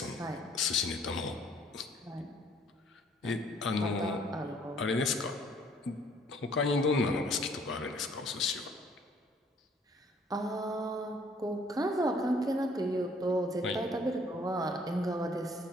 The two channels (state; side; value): normal; both; correlation 0.60